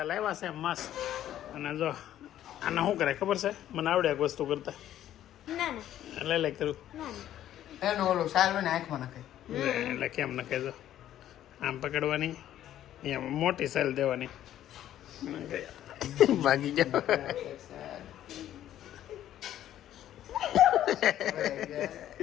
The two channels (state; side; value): quieter; right; 12.0 dB